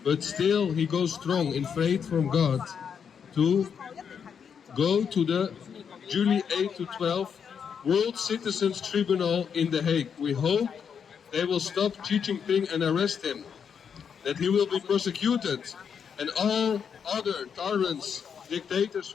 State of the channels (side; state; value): right; quieter; 7.1 dB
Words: But still he goes strong in faith from God to go to the July 8 to 12 World Citizens Tribunal in The Hague. We hope they will stop Xi Jinping and arrest him, that he will be prosecuted, and all other tyrants, dictators